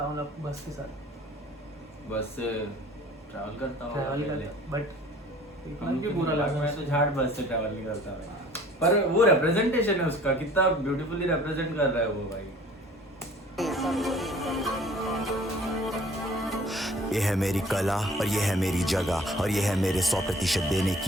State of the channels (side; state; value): both; normal; correlation 0.50